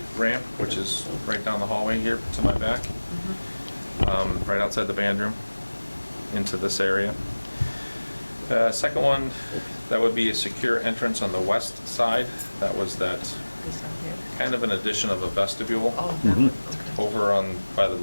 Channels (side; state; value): both; inverted; correlation -1.00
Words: Ramp, which is right down the hallway here to my back, right outside the band room, into this area. Second one, that would be a secure entrance on the west side. That was that This one here? kind of an addition of a vestibule Oh, that one, okay. over on, by the